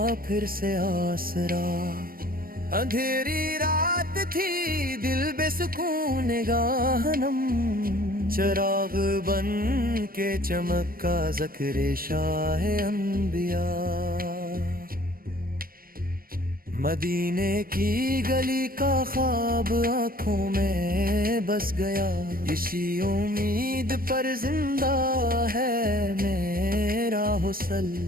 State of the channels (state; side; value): late; left; 0.42 ms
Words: پھر سے آسرا۔ اندھیری رات تھی دل بے سکون نگاہ نم، چراغ بن کے چمکا ذکر شاہ انبیاء۔ مدینے کی گلی کا خواب آنکھوں میں بس گیا، اسی امید پر زندہ ہے میرا حسن۔